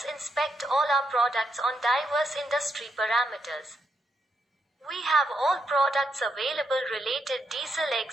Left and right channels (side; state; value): both; normal; correlation 0.80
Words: inspect all our products on diverse industry parameters. We have all products available related diesel